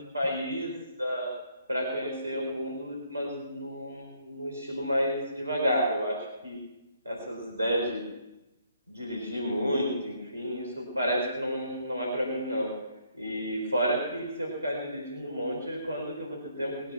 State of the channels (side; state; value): both; inverted; correlation -0.69